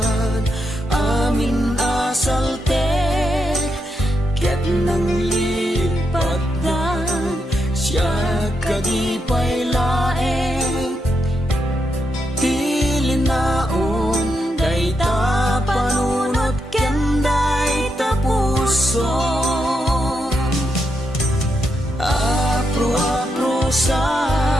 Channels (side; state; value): both; normal; correlation 0.83